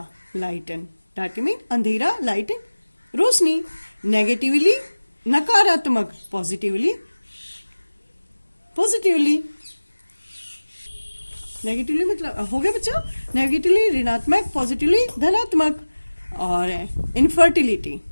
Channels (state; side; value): inverted; both; correlation -1.00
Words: लाइटन। डार्किंग अंधेरा, लाइटन रोशनी। नेगेटिवली नकारात्मक, पॉजिटिवली पॉजिटिवली। नेगेटिवली मतलब हो गया बच्चों, नेगेटिवली ऋणात्मक, पॉजिटिवली धनात्मक। और इनफर्टिलिटी,